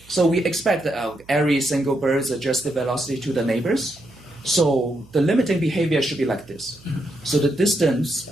So we expect that every single bird adjusts the velocity to the neighbors. So the limiting behavior should be like this. So the distance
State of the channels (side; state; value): right; noise; hum, 26 dB below the sound